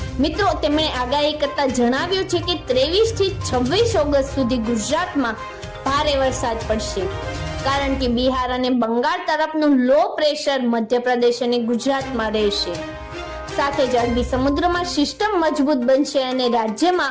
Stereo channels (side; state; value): both; identical; correlation 1.00